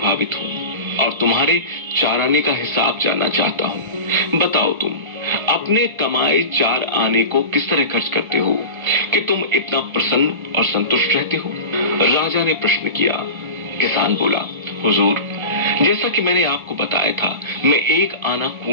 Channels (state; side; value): late; left; 1.3 ms